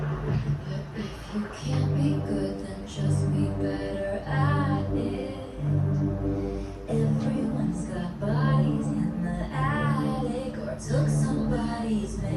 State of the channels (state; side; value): identical; both; correlation 1.00